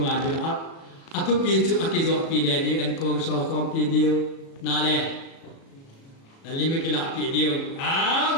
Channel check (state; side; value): late; right; 36 ms